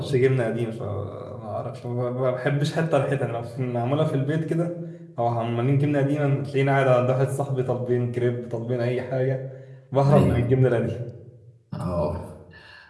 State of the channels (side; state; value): both; identical; correlation 1.00